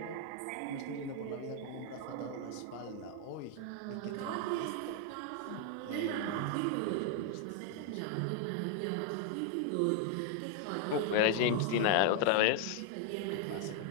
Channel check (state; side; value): different; both; correlation 0.00